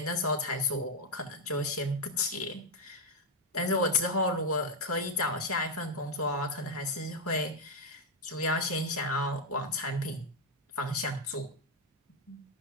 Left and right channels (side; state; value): both; normal; correlation 0.00